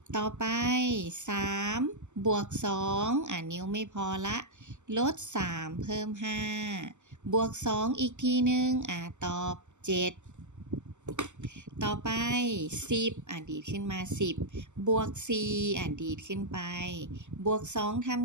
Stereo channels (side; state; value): left; late; 0.84 ms